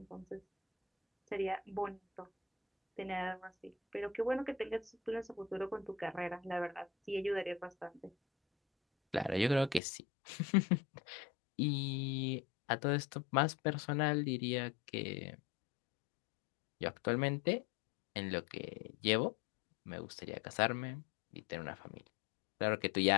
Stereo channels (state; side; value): drops out; right; at 9.8 s